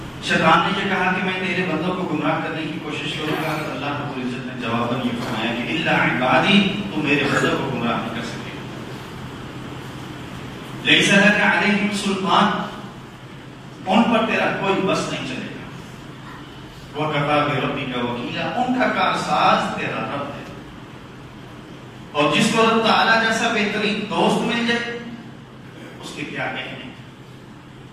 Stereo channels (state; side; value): identical; both; correlation 1.00